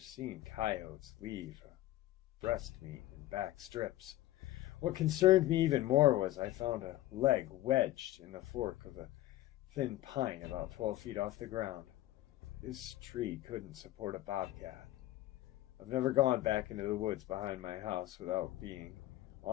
coyotes leave breast meat and back strips. What concerned me even more was I found a leg wedged in the fork of a thin pine about 12 feet off the ground. This tree couldn't support a bobcat. I've never gone back into the woods behind my house without being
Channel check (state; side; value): quieter; right; 15.5 dB